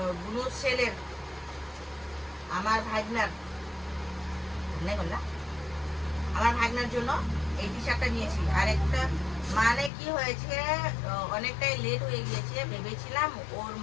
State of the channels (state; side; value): drops out; right; at 9.9 s